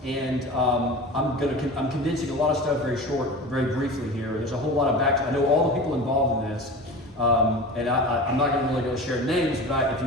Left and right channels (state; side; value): normal; both; correlation 0.33